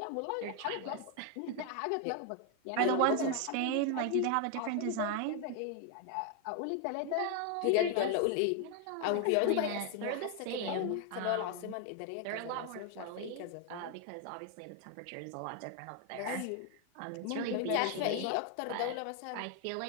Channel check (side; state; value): both; different; correlation 0.01